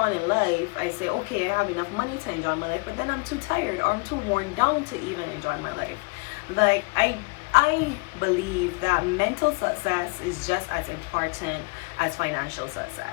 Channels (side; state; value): right; quieter; 30.1 dB